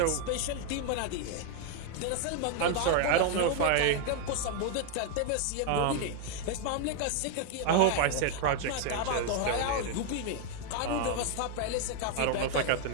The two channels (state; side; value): different; both; correlation 0.01